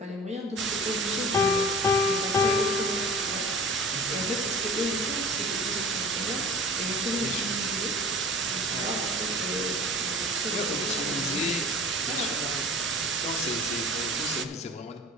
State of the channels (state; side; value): normal; both; correlation 0.41